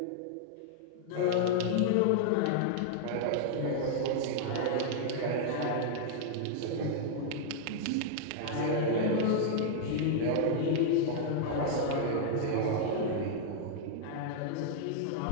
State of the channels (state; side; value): different; both; correlation -0.01